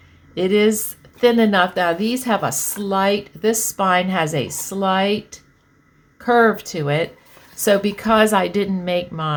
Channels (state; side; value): identical; both; correlation 1.00